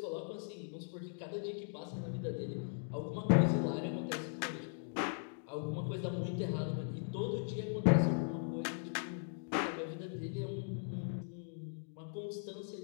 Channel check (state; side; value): silent; right; digital silence